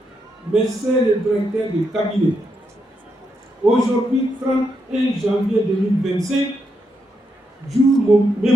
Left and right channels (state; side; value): normal; both; correlation 0.82